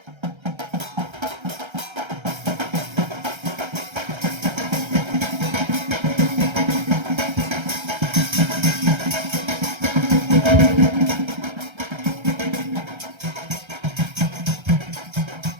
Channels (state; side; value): late; left; 1.3 ms